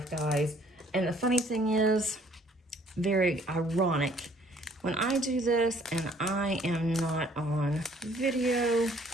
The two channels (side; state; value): both; normal; correlation 0.60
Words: guys. And the funny thing is, very ironic, when I do this and I am not on video,